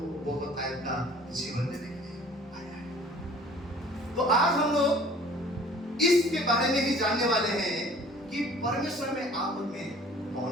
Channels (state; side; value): normal; both; correlation 0.50